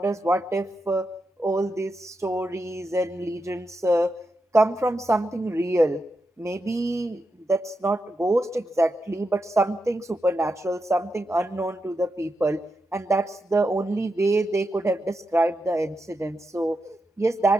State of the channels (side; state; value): both; normal; correlation 0.87